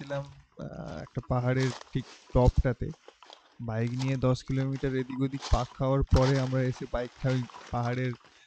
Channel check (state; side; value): identical; both; correlation 1.00